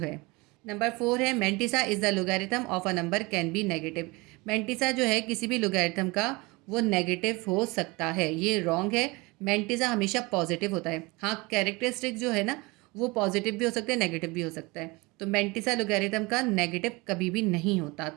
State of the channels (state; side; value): quieter; left; 24.5 dB